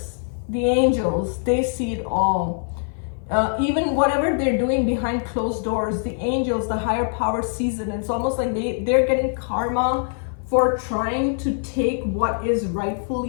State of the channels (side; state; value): right; silent; 55 dB below the other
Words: the angels, they see it all. Even whatever they're doing behind closed doors, the angels, the higher power sees it. And it's almost like they're getting karma for trying to take what is